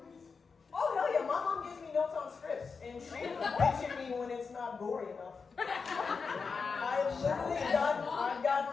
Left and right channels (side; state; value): right; quieter; 5.1 dB